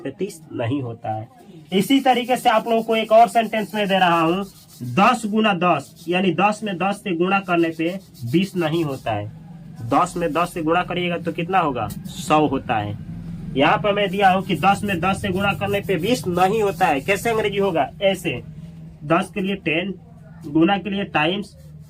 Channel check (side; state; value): both; identical; correlation 1.00